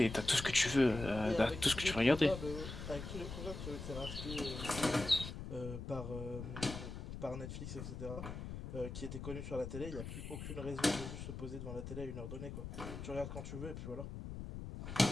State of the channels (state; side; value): noise; left; rumble, 8 dB below the sound